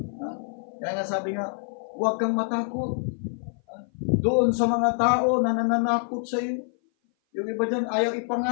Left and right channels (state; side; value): silent; right; 57 dB below the other